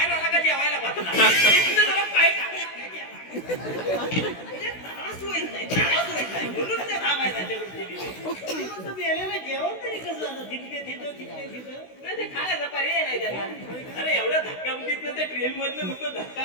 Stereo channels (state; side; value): late; right; 16 ms